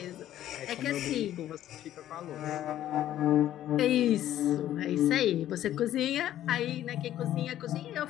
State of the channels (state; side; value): quieter; right; 12.4 dB